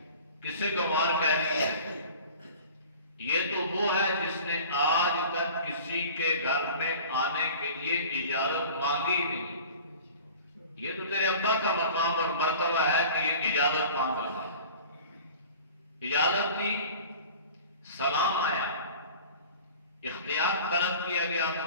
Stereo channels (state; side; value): inverted; both; correlation -0.42